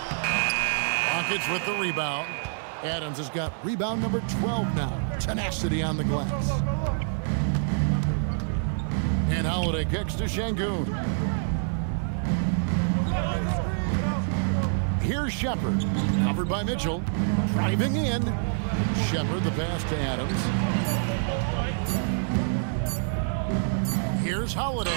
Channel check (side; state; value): left; silent; 60 dB below the other